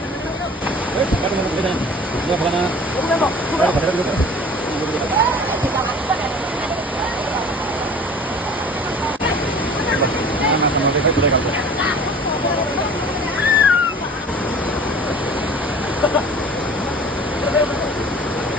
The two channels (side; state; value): both; normal; correlation 0.45